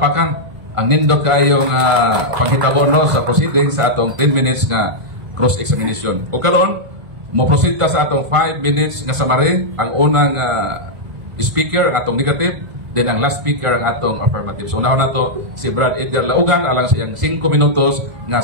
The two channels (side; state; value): left; late; 1.5 ms